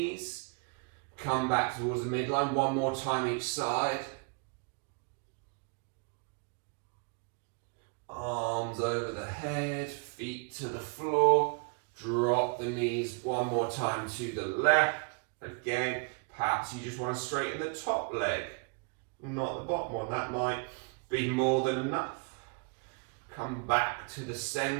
Come back towards the midline, one more time each side. Arms over the head, feet to the floor. Drop the knees one more time to the left. Again, perhaps you just want to straighten the top leg, not the bottom one. That might be more than enough. Come back to the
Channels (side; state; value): left; quieter; 34.5 dB